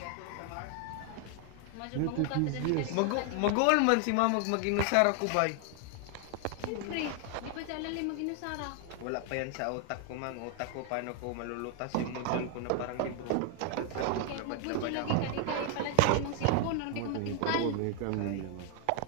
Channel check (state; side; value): different; both; correlation 0.00